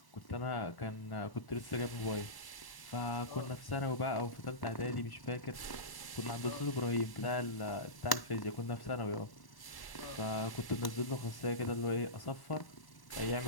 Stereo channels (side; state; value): right; late; 1.1 ms